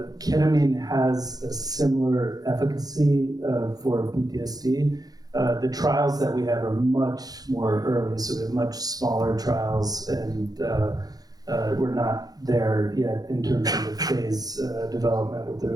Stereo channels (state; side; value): late; left; 0.18 ms